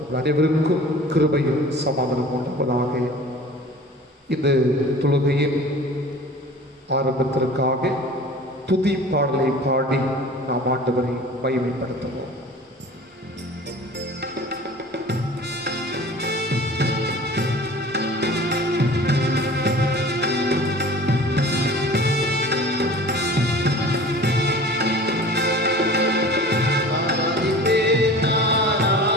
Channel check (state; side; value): normal; both; correlation 0.42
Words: அனைவருக்கும் கிருபையும் சமாதானம் உண்டாவதாக. இந்த தொழுகையின் ஆரம்பத்திற்காக துதி பாடலை பாடி நாம் ஆண்டவரை மகிமைப்படுத்துவோம்.